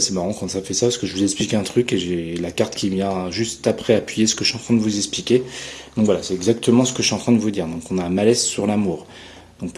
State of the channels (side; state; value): both; identical; correlation 1.00